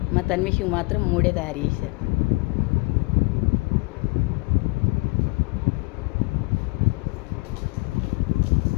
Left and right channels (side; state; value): right; quieter; 26.8 dB